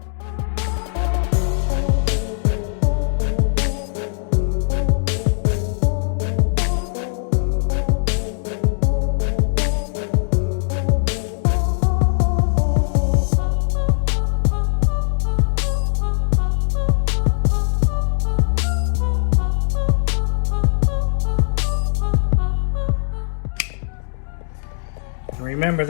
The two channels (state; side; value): silent; right; digital silence